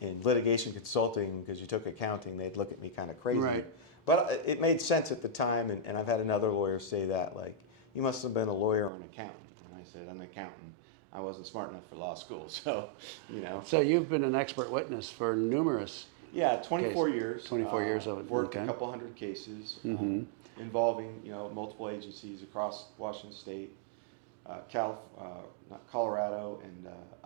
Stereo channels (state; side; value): drops out; left; at 8.9 s